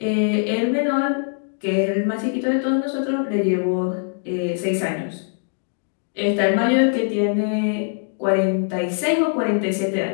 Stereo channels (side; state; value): right; silent; digital silence